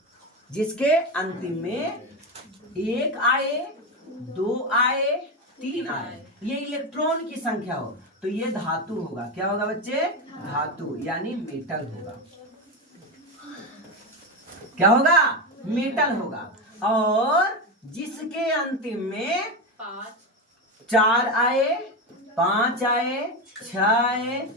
1 आए, 2 आए, 3 आए, ये इलेक्ट्रॉन की संख्या हो तो ये धातु होगा। क्या होगा बच्चे? धातु, यानी मेटल होगा। क्या होगा? मेटल होगा। और जिसके अंतिम में 4 आए, 5 आए, 6 आए,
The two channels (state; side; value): normal; both; correlation 0.15